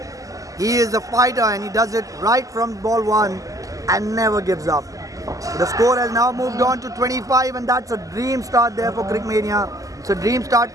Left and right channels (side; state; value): left; late; 0.17 ms